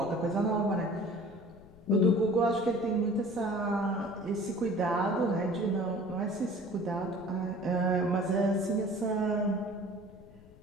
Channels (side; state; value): left; noise; rumble, 23 dB below the sound